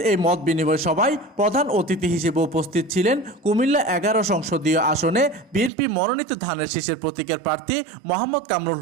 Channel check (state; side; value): drops out; left; at 5.7 s